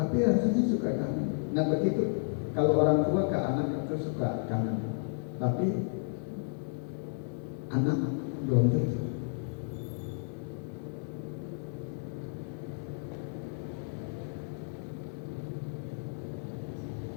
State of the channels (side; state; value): right; silent; digital silence